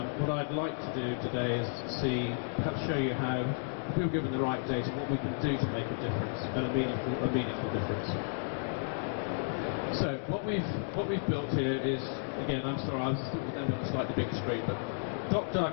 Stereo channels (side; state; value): right; silent; digital silence